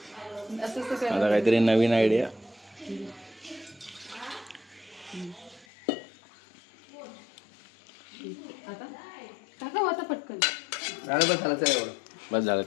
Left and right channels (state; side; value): drops out; right; at 5.7 s